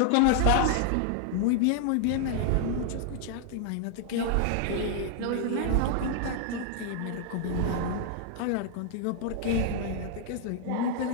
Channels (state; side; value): different; both; correlation 0.00